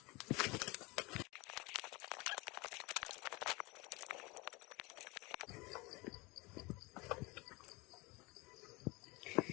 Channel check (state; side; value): quieter; right; 25.0 dB